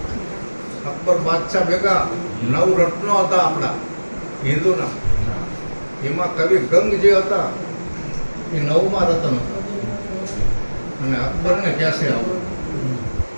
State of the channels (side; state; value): both; inverted; correlation -1.00